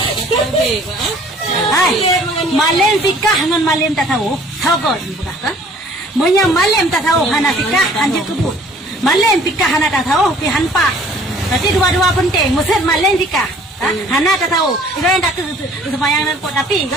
Hai, malam fikah dengan malam tak tahu. Tahu kau bukan kan? Maya malam tak tahu hana fikah anjir kebut. Malam fikah hana tak tahu pi hanpa. Berarti dua-dua penting. Maksud malam fikah. Hana tak tahu. Itu yang tak sembahyang dan pot tapi kau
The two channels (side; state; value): both; normal; correlation 0.54